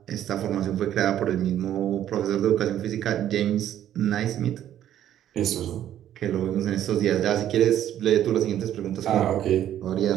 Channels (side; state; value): left; quieter; 11.3 dB